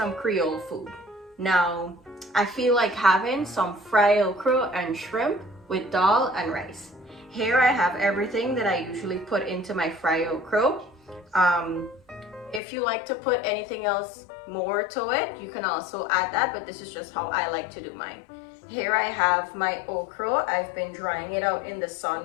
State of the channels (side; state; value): right; drops out; at 12.6 s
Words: Creole food. Now I feel like having some fried okra and shrimp with dal and rice. Here I have everything that I usually put into my fried okra. If you like to put anything else more to it, you can also add that, but this is just how I like to do mine. Here I have my okra. I've been drying it out in the sun